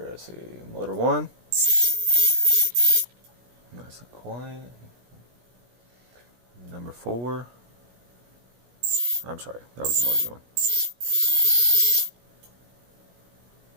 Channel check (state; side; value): late; left; 17 ms